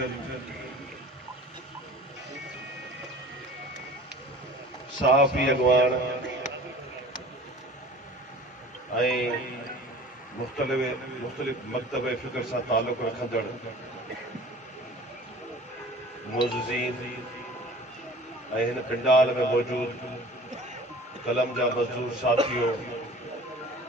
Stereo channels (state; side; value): normal; both; correlation 0.43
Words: सहाफ़ी अगवान ऐं मुख़्तलिफ़ मकतब फ़िक्र सां ताल्लुक़ रखंदड़ मोज़ज़ीन ऐं हिन पिंडाल में मौजूद कलम जा मज़दूर साथियों,